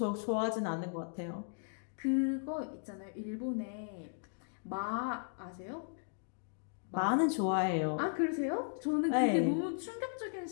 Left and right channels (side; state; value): right; silent; digital silence